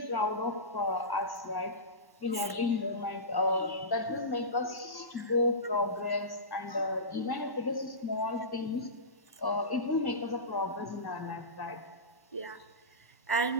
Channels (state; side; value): late; right; 1.1 ms